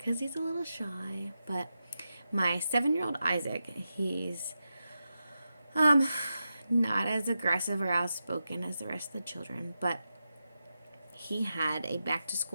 he's a little shy. But my 7-year-old Isaac, he's not as aggressive or outspoken as the rest of the children, but he had a back to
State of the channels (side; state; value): both; inverted; correlation -0.89